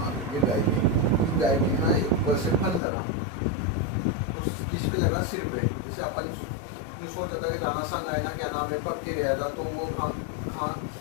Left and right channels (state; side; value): drops out; right; at 2.8 s